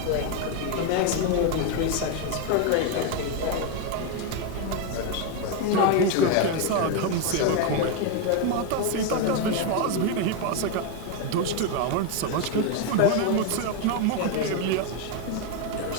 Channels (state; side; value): different; both; correlation 0.02